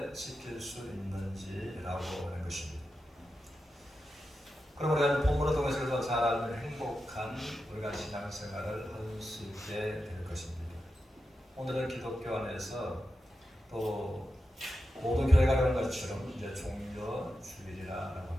지킬 수 있는지라고 하는 것입니다. 그럼 우리가 본문을 통해서 잘 알면 행복한 우리가 신앙생활을 할 수 있게 될 것입니다. 오늘은 기독교 안에서 또 모든 교회가 그런 것처럼 이제 종려 주일이라고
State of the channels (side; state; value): both; normal; correlation 0.90